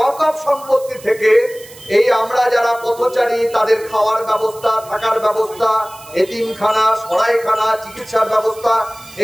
সম্পত্তি থেকে এই আমরা যারা পথচারী তাদের খাওয়ার ব্যবস্থা, থাকার ব্যবস্থা, এতিমখানা, সরাইখানা, চিকিৎসার ব্যবস্থা,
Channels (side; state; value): right; noise; hiss, 20 dB below the sound